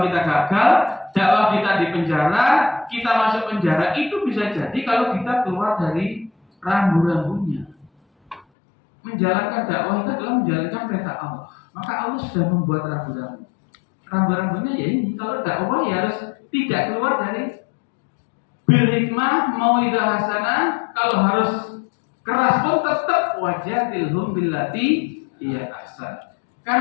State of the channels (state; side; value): drops out; right; at 8.5 s